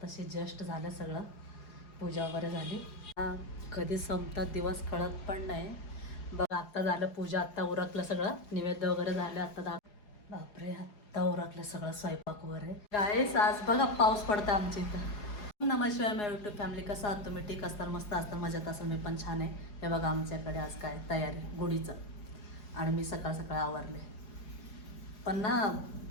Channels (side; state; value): right; late; 4.8 ms